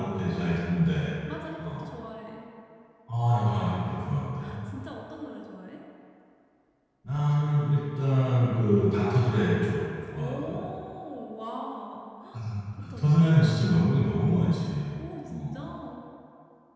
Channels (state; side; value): identical; both; correlation 1.00